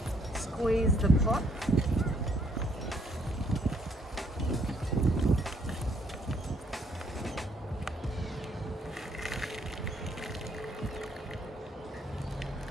squeeze the pot.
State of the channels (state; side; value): normal; both; correlation 0.68